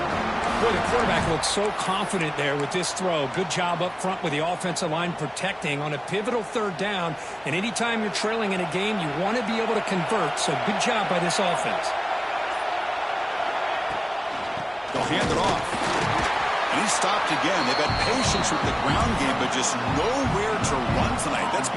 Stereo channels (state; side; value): identical; both; correlation 1.00